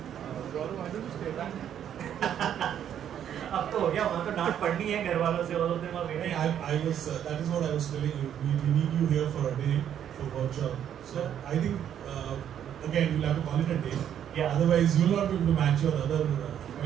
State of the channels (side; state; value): left; quieter; 9.7 dB